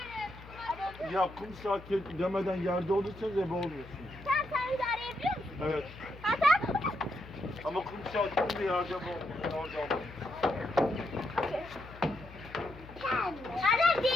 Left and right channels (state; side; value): noise; left; hum, 17 dB below the sound